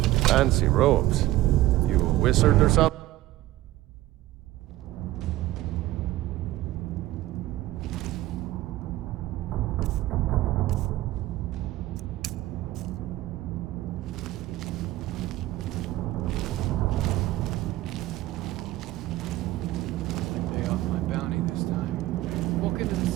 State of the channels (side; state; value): left; quieter; 16.1 dB